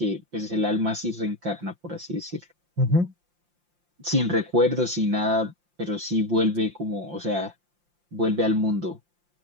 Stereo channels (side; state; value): left; late; 5.7 ms